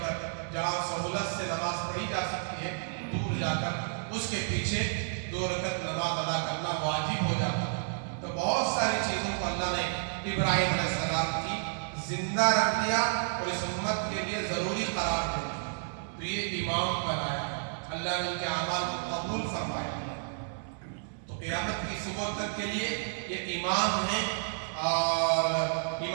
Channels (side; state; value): left; silent; 57 dB below the other